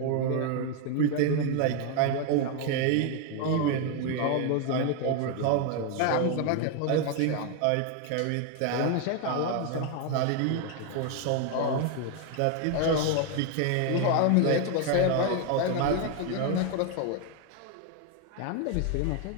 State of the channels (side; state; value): both; different; correlation 0.01